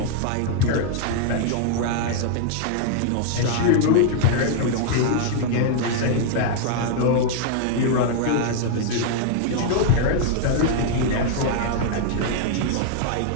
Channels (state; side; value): different; both; correlation -0.01